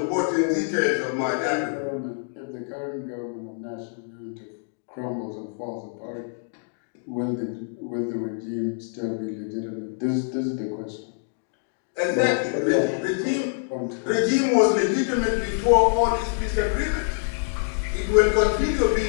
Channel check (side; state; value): right; silent; digital silence